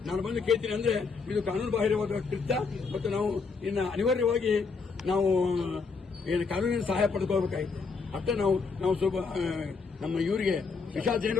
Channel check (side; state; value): right; quieter; 4.8 dB